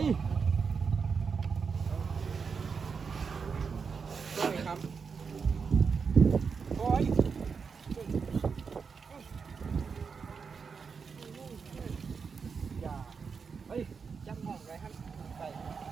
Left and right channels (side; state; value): left; quieter; 5.6 dB